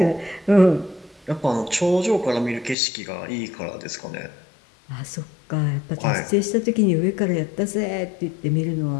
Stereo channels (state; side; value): drops out; right; at 2.8 s